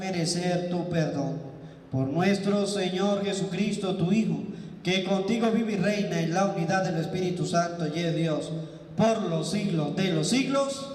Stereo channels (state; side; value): identical; both; correlation 1.00